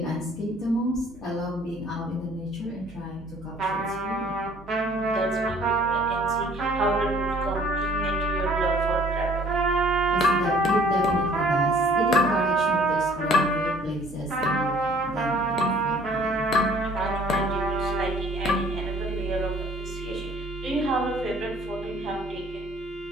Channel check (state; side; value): normal; both; correlation 0.55